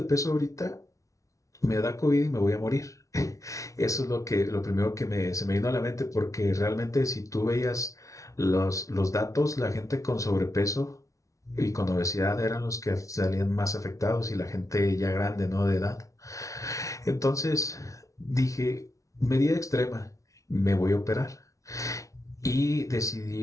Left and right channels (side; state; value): right; late; 0.16 ms